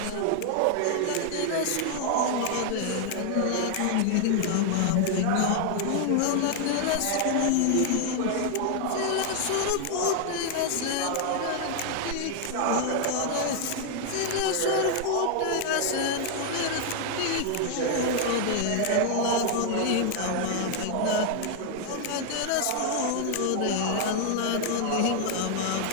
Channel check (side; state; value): both; different; correlation 0.00